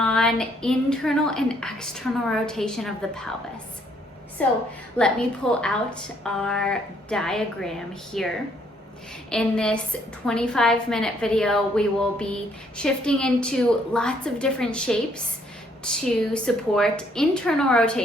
internal and external rotation of the pelvis. So let me pull out our diagram here. In this 25-minute video, we will be shifting into lots of different shapes to support internal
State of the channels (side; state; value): both; normal; correlation 0.67